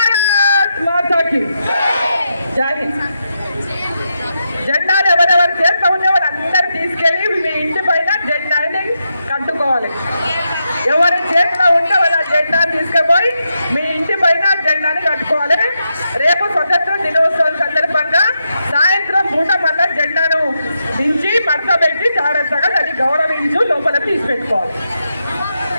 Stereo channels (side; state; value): both; inverted; correlation -0.85